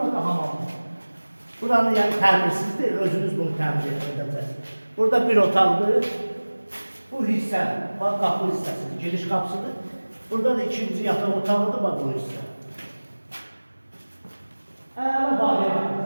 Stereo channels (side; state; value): both; inverted; correlation -1.00